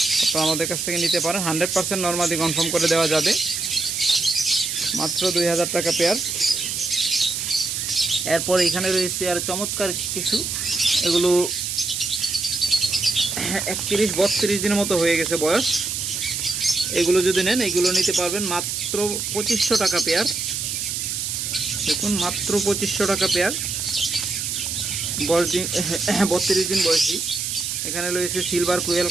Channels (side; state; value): right; noise; hiss, 2 dB below the sound